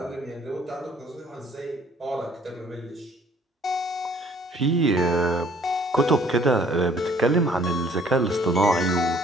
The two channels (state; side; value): normal; both; correlation 0.58